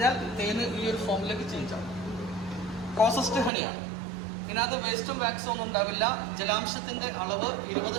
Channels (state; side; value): drops out; left; at 3.5 s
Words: തേന് ഈ ഒരു ഫോമിലേക്ക് ചേഞ്ച് ആവും. പ്രോസസ്ഡ് ഹണിയാണ്. ഇതിനകത്ത് വേസ്റ്റും വാക്സും ഒന്നും ഉണ്ടാവില്ല. ജലാംശത്തിന്റെ അളവ്